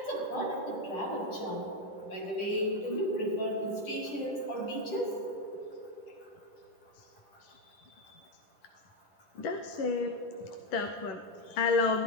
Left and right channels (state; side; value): late; right; 10 ms